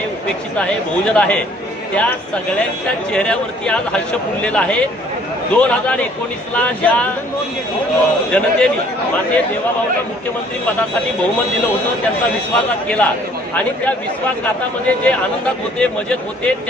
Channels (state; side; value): normal; both; correlation 0.59